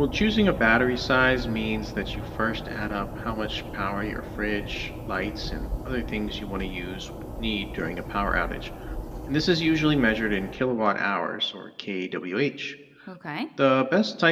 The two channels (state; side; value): identical; both; correlation 1.00